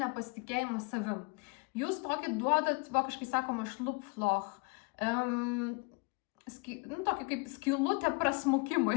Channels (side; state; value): right; quieter; 30.0 dB